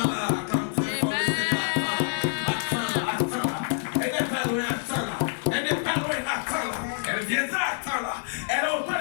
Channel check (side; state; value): right; silent; 60 dB below the other